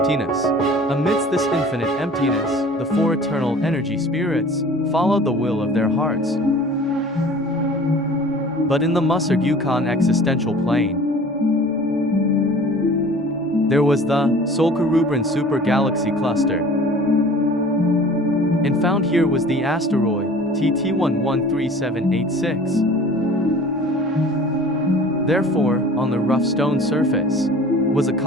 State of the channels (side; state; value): both; normal; correlation 0.45